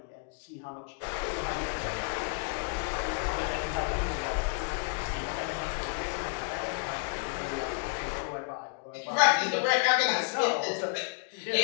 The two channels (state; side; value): quieter; right; 38.5 dB